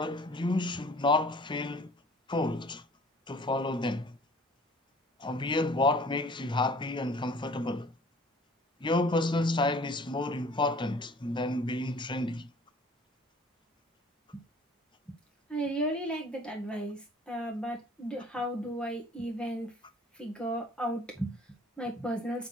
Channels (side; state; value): both; normal; correlation 0.51